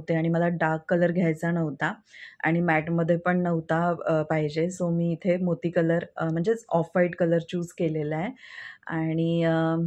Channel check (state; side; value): identical; both; correlation 1.00